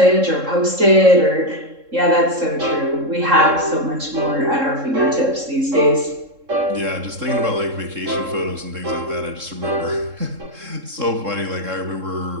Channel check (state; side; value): late; left; 3.7 ms